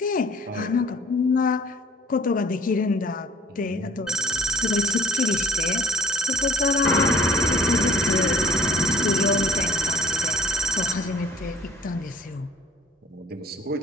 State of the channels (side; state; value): both; normal; correlation 0.51